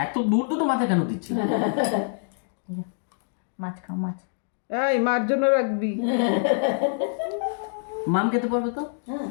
এত দূর তো মাথা কেন দিচ্ছি? মাছ খাও মাছ। এই মার জন্য রাখবি। মাম খেতে পারবে তো? হ্যাঁ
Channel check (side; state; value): right; silent; digital silence